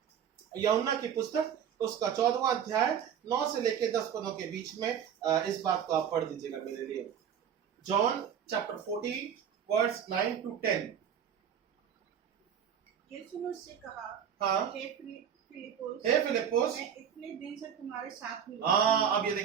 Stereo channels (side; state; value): left; quieter; 8.4 dB